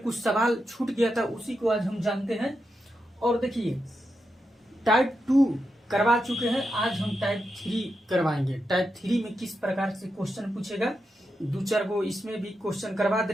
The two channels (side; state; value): both; normal; correlation 0.86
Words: सवाल छूट गया था, उसी को आज हम जानते हैं। और देखिए, टाइप 2 करवा चुके हैं, आज हम टाइप 3 करवाएंगे। टाइप 3 में किस प्रकार से क्वेश्चन पूछेगा, दो चार गो इसमें भी क्वेश्चन करवा दे